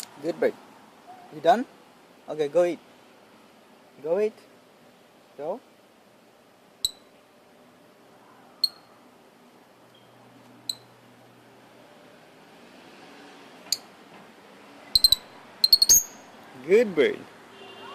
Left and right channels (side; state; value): both; identical; correlation 1.00